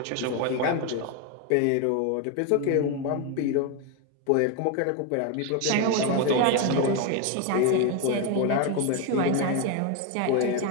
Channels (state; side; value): different; both; correlation 0.02